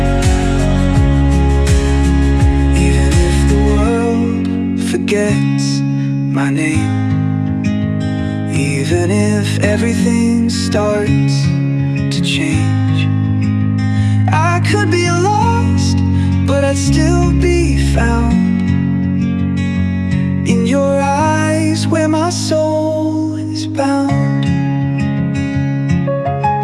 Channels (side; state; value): both; identical; correlation 1.00